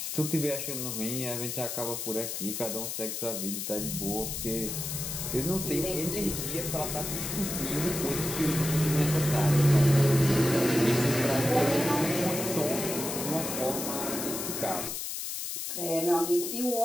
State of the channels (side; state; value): left; noise; hiss, 4 dB below the sound